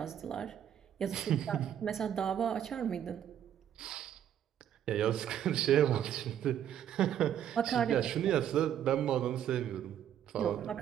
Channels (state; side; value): quieter; left; 10.0 dB